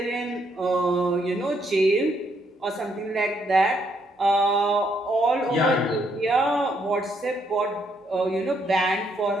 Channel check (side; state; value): both; normal; correlation 0.73